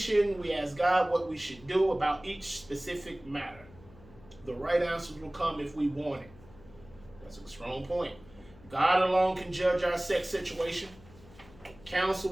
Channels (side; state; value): left; noise; hum, 22 dB below the sound